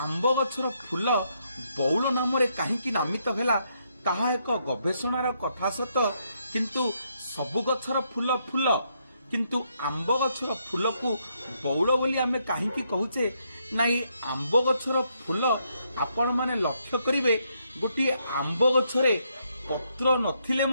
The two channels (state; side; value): inverted; both; correlation -0.76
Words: गछर फूल बौल नाम कहीं नामित है ताहा एक गवेषणार कथा सत किंतु सबु गछर फूल फूल किंतु आंब गछर फूल को बौल बोली आमे कहीं कहूचे ना। आंब गछर फूल आपण माने लक्ष्य करिवे गोटे आंब गछरे पत्र नथिले